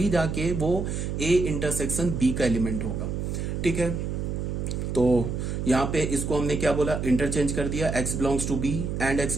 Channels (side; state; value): right; noise; hum, 3 dB below the sound